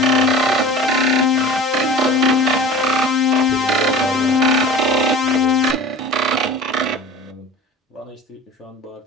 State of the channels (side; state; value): both; normal; correlation 0.38